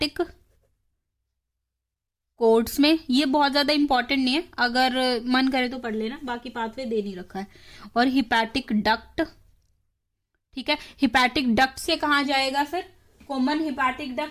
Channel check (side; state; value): both; identical; correlation 1.00